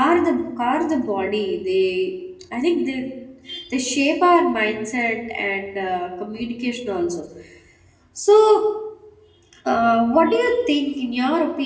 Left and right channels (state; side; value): identical; both; correlation 1.00